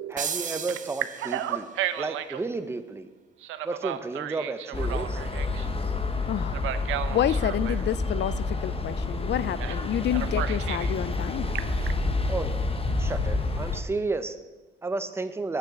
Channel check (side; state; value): both; normal; correlation 0.52